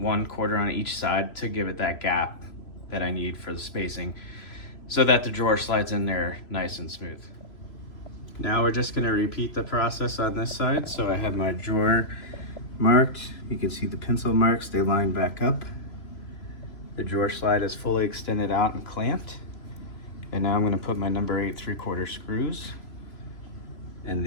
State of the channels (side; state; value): right; late; 3.0 ms